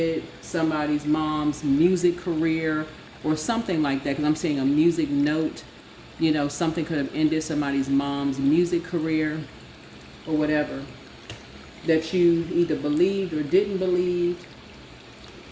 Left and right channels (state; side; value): identical; both; correlation 1.00